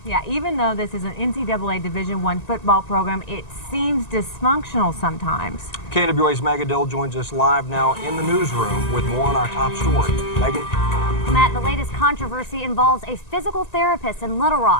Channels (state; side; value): late; right; 1.9 ms